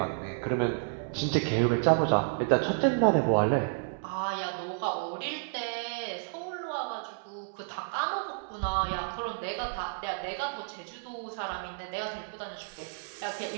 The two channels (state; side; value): silent; left; digital silence